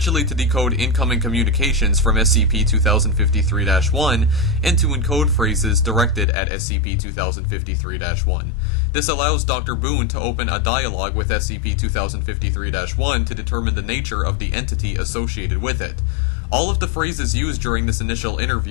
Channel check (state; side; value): drops out; right; at 6.2 s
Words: to decode incoming communications from SCP-2053-1 and to encode phrases directed at SCP-2053-1. This allows Dr. Boone to open a dialogue with SCP-2053-1 to determine the nature of the entity associated with it. All of the phrases used during this initial